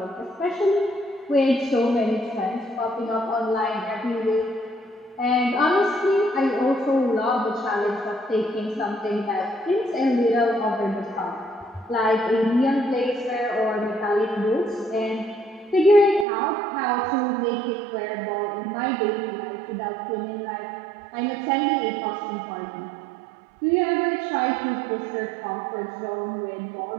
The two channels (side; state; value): left; drops out; at 16.2 s